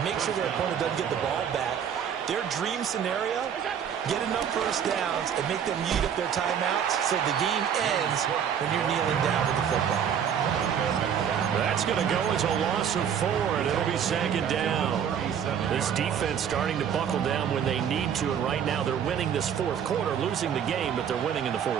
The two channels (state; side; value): quieter; left; 8.3 dB